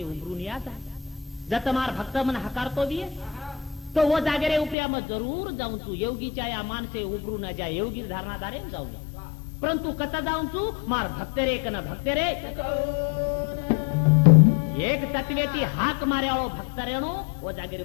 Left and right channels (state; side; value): drops out; right; at 4.8 s